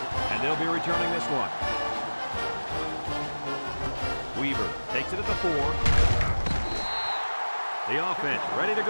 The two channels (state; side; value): inverted; both; correlation -1.00